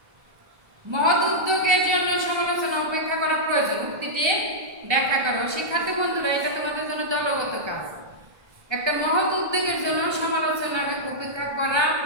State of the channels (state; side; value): late; left; 1.3 ms